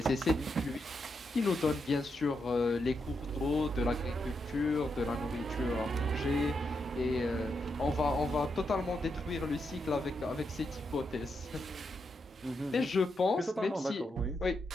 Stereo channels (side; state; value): both; normal; correlation 0.83